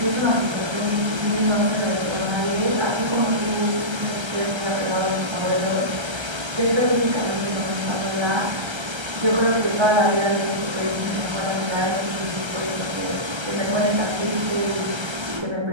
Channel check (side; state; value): left; late; 1.3 ms